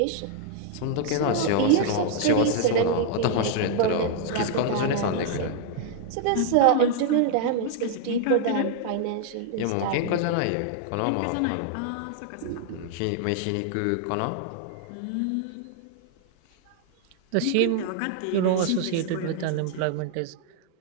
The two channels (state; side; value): different; both; correlation -0.01